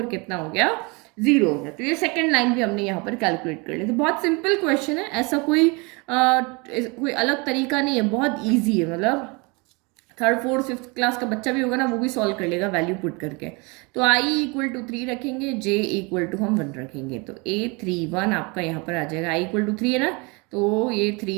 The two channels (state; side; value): quieter; left; 28.9 dB